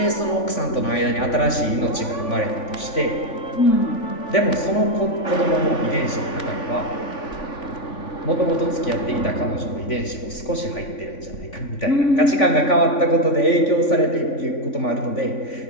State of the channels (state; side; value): late; right; 3.5 ms